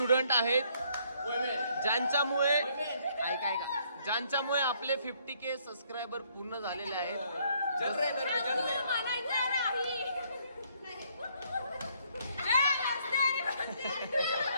आहेत ज्यांच्यामुळे आपले 50K सबस्क्रायबर पूर्ण झालेले आहेत.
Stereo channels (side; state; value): both; inverted; correlation -0.67